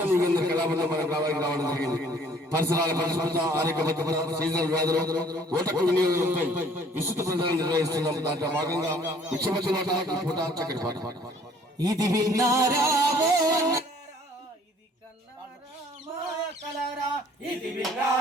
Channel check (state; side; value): normal; both; correlation 0.57